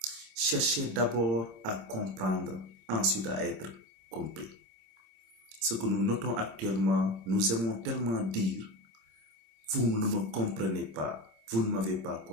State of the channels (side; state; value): left; late; 26 ms